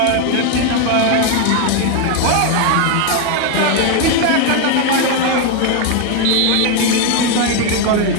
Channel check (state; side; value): different; both; correlation 0.01